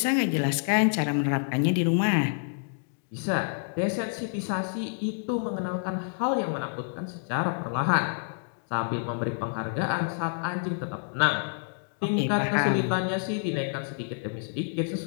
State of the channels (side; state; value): right; silent; digital silence